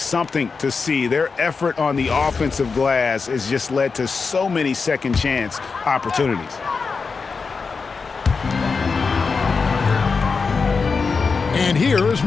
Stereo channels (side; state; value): right; quieter; 4.8 dB